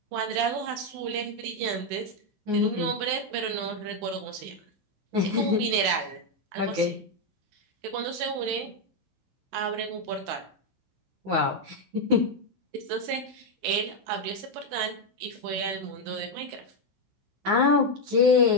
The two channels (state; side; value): late; left; 16 ms